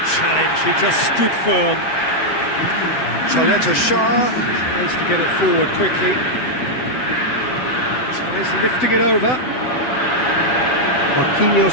challenge, he just stood firm. Chaleta Shah tries to get it forward quickly. Tries lifting it over.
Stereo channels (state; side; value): late; right; 7.9 ms